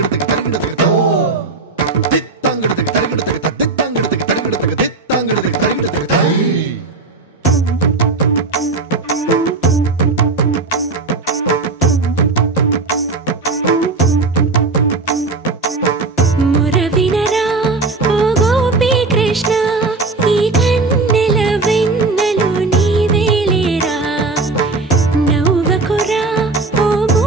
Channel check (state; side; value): quieter; left; 3.7 dB